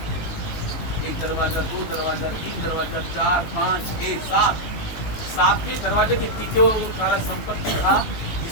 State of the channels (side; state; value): right; late; 19 ms